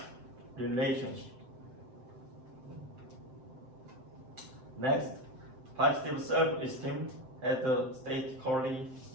relationship. Next, positive self-esteem has a statistically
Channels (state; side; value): late; left; 7.7 ms